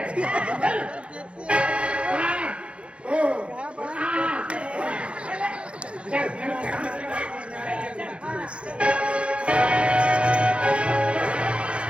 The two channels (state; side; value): late; left; 0.059 ms